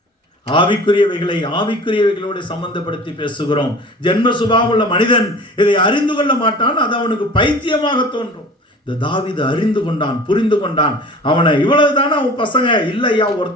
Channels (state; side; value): normal; both; correlation 0.42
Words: ஆவிக்குரியவைகளை ஆவிக்குரியவைகளோடு சம்பந்தப்படுத்தி பேசுகிறோம். ஜென்ம சுபாவமுள்ள மனிதன் இதை அறிந்து கொள்ள மாட்டான். அது அவனுக்கு பைத்தியமாக தோன்றும். இந்த தாவீது அறிந்து கொண்டான், புரிந்து கொண்டான். அவனை இவ்வளவுதானே அவன் பசங்க, இல்லையா